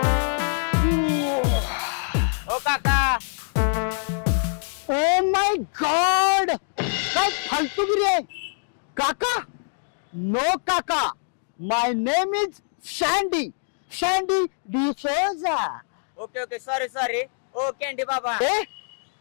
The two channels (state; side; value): silent; right; digital silence